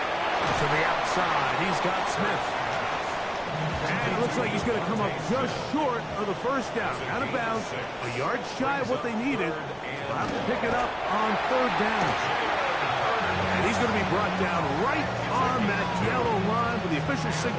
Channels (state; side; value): identical; both; correlation 1.00